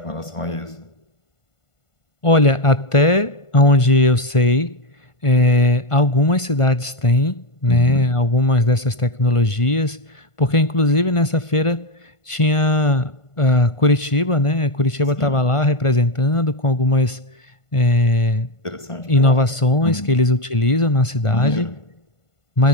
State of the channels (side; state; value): right; late; 1.5 ms